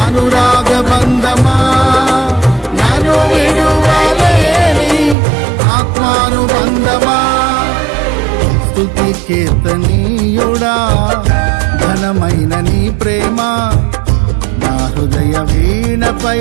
అనురాగ బంధమా నాను విడువలేని ఆత్మానుబంధమా. స్తుతి కీర్తనీయుడా ఘనమైన నీ ప్రేమ నా హృదయ వీణపై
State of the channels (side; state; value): left; drops out; at 5.2 s